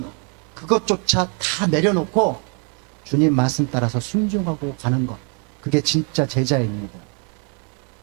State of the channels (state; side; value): quieter; left; 37.8 dB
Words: 그것조차 다 내려놓고 주님 말씀 따라서 순종하고 가는 것, 그게 진짜 제자입니다.